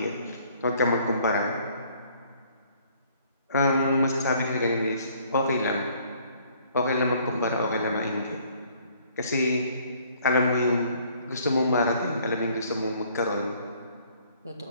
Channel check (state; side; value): inverted; both; correlation -0.60